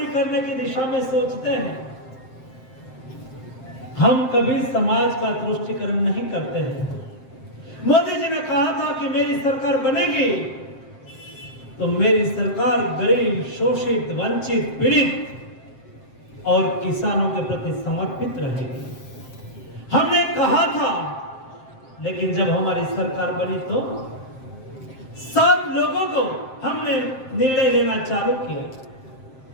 करने की दिशा में सोचते हैं। हम कभी समाज का तुष्टीकरण नहीं करते हैं। मोदी जी ने कहा था कि मेरी सरकार बनेगी तो मेरी सरकार गरीब, शोषित, वंचित, पीड़ित और किसानों के प्रति समर्पित रहेगी। हमने कहा था, लेकिन जब हमारी सरकार बनी तो सब लोगों को हमने निर्णय लेना चालू किया।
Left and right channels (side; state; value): right; late; 7.6 ms